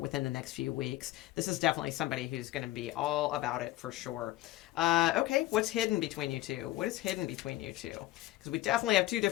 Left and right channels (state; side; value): quieter; right; 16.3 dB